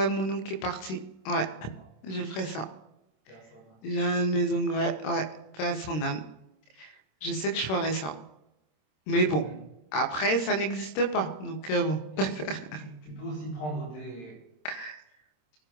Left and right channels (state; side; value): late; right; 26 ms